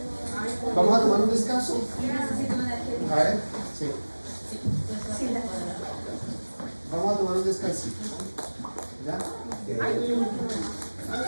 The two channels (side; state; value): both; inverted; correlation -1.00